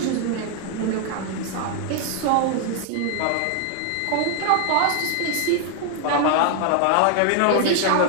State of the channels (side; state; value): both; different; correlation 0.00